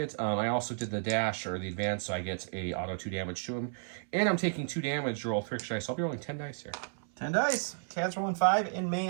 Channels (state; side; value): silent; left; 56 dB below the other